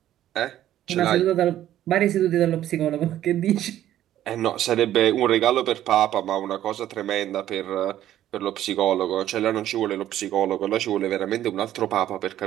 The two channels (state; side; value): quieter; left; 12.4 dB